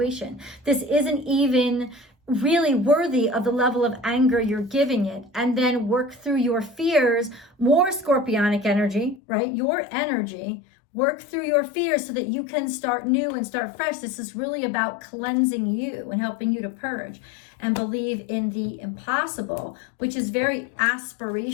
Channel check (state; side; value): drops out; right; at 9.2 s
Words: This isn't even really worthy of the level of anger you're giving it. And then work through your fears, more scorpionic energy, right? Your energy, work through your fears so that you can start new and start fresh. This is really about cleansing you and helping you to purge and believe in the impossible, which is very